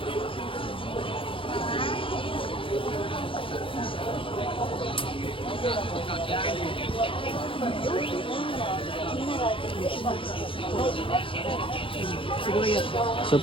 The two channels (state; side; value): late; right; 0.25 ms